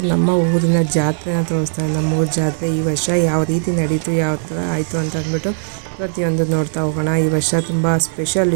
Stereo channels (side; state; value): left; silent; digital silence